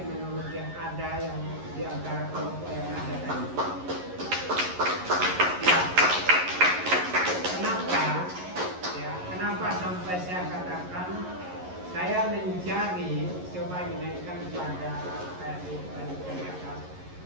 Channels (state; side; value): late; left; 11 ms